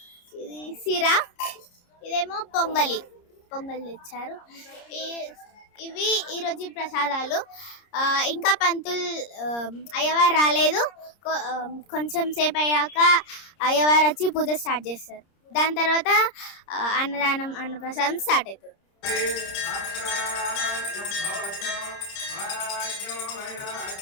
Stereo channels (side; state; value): right; late; 30 ms